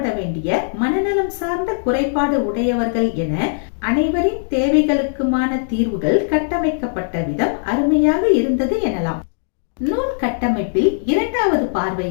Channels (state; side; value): silent; right; digital silence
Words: வேண்டிய மனநலம் சார்ந்த குறைபாடு உடையவர்கள் என அனைவரின் தேவைகளுக்குமான தீர்வுகள் கட்டமைக்கப்பட்ட விதம் அருமையாக இருந்தது எனலாம். நூல் கட்டமைப்பில் இரண்டாவது பார்வை